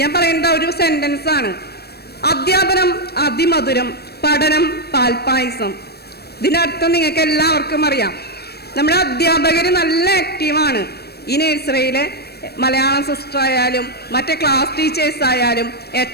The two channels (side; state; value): right; late; 0.47 ms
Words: ഞാൻ പറയുന്നത് ഒരു സെൻറ്റൻസാണ്. അധ്യാപനം അതിമധുരം, പഠനം പാൽപ്പായസം. ഇതിനർത്ഥം നിങ്ങൾക്ക് എല്ലാവർക്കും അറിയാം. നമ്മുടെ അധ്യാപകർ നല്ല ആക്റ്റീവാണ്. ഈ നഴ്സറിയിലെ മലയാളം സിസ്റ്റർ ആയാലും മറ്റേ ക്ലാസ് ടീച്ചേഴ്സ് ആയാലും